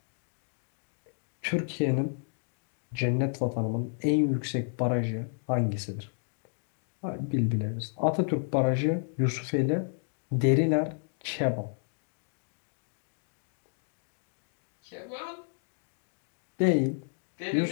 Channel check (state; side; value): silent; right; 57 dB below the other